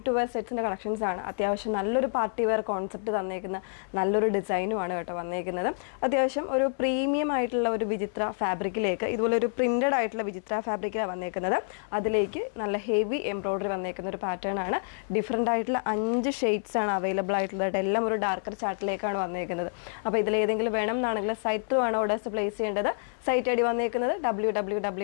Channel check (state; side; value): silent; right; 59 dB below the other